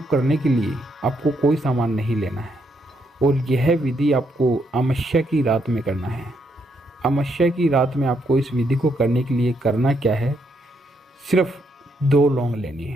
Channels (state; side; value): normal; both; correlation 0.76